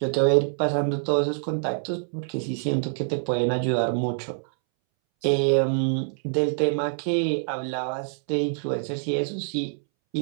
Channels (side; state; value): left; silent; 61 dB below the other